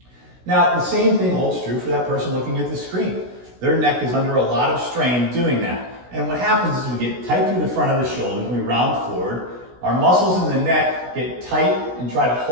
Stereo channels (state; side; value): late; left; 16 ms